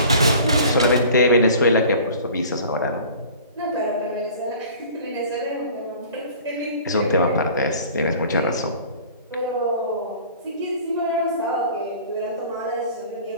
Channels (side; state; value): both; inverted; correlation -0.45